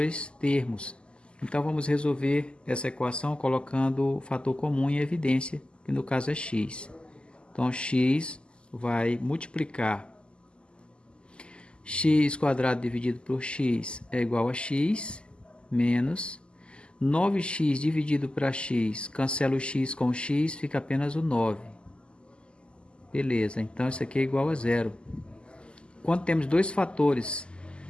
termos. Então, vamos resolver essa equação colocando o fator comum em evidência, que no caso é x. Então, x vai multiplicar x² dividido por x é igual a x, menos 9x dividido para x, cancela o x com o x, fica apenas o 9. Beleza, então isso aqui é igual a zero. Quando temos dois fatores,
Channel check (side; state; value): right; late; 0.051 ms